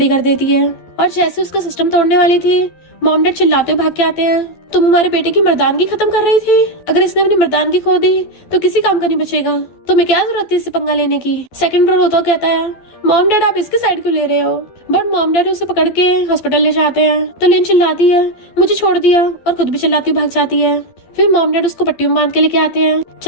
कर देती है। और जैसे उसका सिस्टम तोड़ने वाली थी, मॉम डैड चिल्लाते हुए भाग के आते हैं, तुम हमारे बेटे की मर्दानगी खत्म कर रही थी, अगर इसने अपनी मर्दानगी खो दी तो किसी काम का नहीं बचेगा, तुम्हें क्या जरूरत थी इससे पंगा लेने की। सेकंड ब्रो रोता कहता है, मॉम डैड आप इसकी साइड क्यों ले रहे हो, बट मॉम डैड उसे पकड़ के हॉस्पिटल ले जाते हैं। तो लिन चिल्लाती है, मुझे छोड़ दिया, और खुद भी चिल्लाती भाग जाती है। फिर मॉम डैड उसको पट्टी में बांध के लेके आते हैं,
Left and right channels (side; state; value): right; late; 12 ms